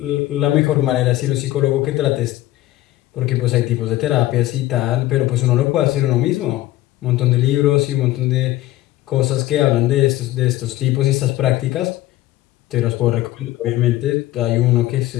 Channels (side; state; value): right; quieter; 16.0 dB